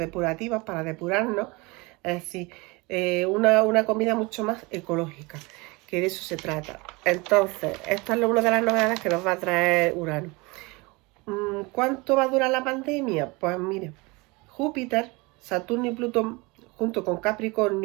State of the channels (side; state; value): left; quieter; 25.5 dB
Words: para depurarnos. Es decir, una comida mucho más ecológica, que de eso se trata. Entonces, esta es una de las novedades que nos va a traer Urano. ¿Cuánto va a durar la pandemia? Pues mire, Júpiter, Saturno y Plutón, junto con